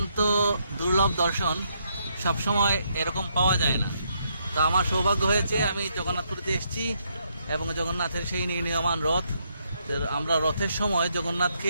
দুর্লভ দর্শন, সবসময় এরকম পাওয়া যায় না। তো আমার সৌভাগ্য হয়েছে, আমি জগন্নাথপুরীতে এসেছি এবং জগন্নাথের সেই নির্ণীয়মান রথ। আমরা রথের সময় জগন্নাথকে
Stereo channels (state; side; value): inverted; both; correlation -0.75